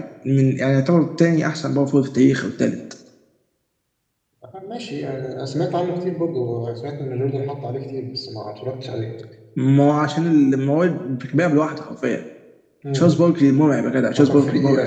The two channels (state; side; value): identical; both; correlation 1.00